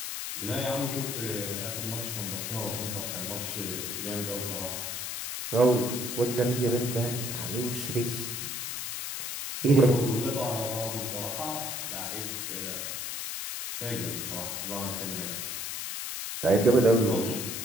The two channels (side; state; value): left; noise; hiss, 4 dB below the sound